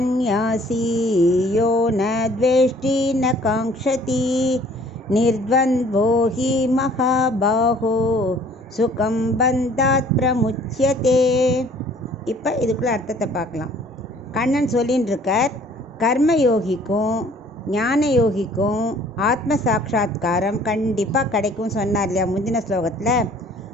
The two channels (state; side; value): normal; both; correlation 0.55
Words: யோ ந த்வேஷ்டி ந காங்க்ஷதி நிர்த்வந்த்வோ ஹி மகாபாஹோ சுகம் பந்தாத் பிரமுச்யதே. இப்போ இதுக்குள்ள அர்த்தத்தை பார்க்கலாம். கண்ணன் சொல்லின்னு இருக்கார், கர்மயோகிக்கும் ஞான யோகிக்கும் ஆத்ம சாட்சா்காரம் கண்டிப்பாக கிடைக்கும் சொன்னார் இல்லையா முந்தின ஸ்லோகத்தில்.